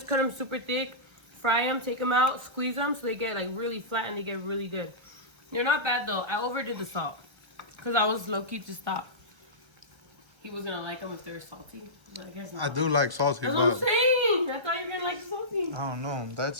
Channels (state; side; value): late; left; 1.3 ms